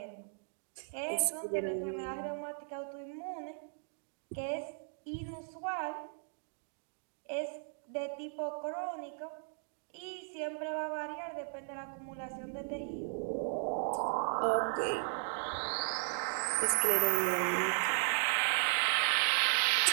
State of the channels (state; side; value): silent; left; digital silence